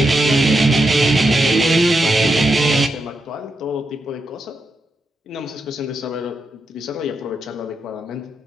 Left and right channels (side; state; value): both; normal; correlation 0.85